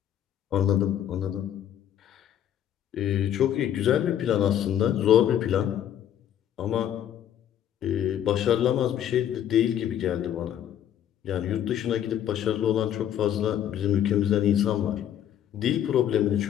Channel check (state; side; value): quieter; right; 10.5 dB